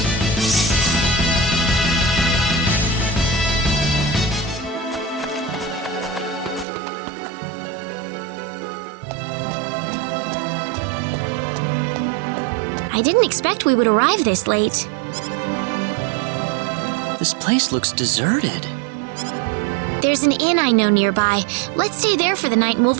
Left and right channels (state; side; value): drops out; left; at 6.7 s